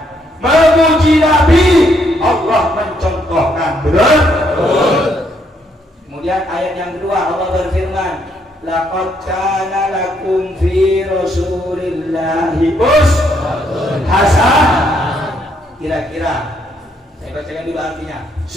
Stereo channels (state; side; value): normal; both; correlation 0.72